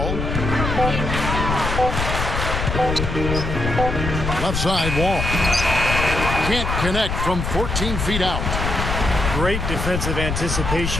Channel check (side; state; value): left; noise; rumble, 2 dB below the sound